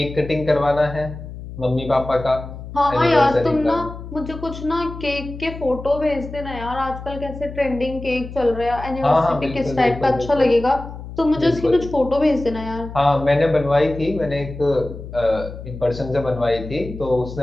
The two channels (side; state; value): left; noise; hum, 12 dB below the sound